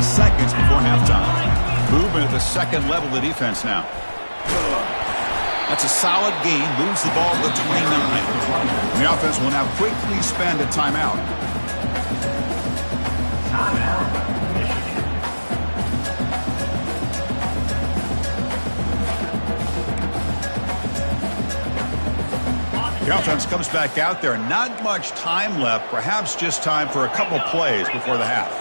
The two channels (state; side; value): inverted; both; correlation -1.00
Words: seconds before halftime. Movement at the second level of the defense now. That's a solid gain. Moves the ball to the 29. And the offense will now quickly spend a timeout. The offense comes back out there. Not much time left. Perhaps just time for a couple plays before the half.